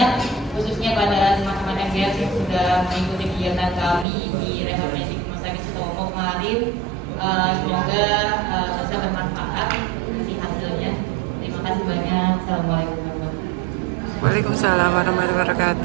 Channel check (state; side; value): drops out; left; at 4.0 s